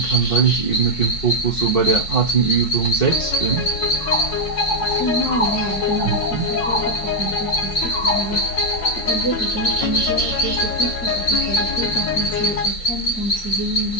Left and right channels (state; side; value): late; right; 5.4 ms